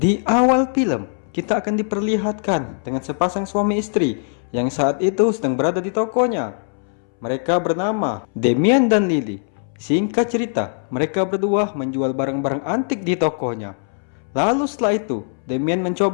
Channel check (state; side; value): silent; right; 65 dB below the other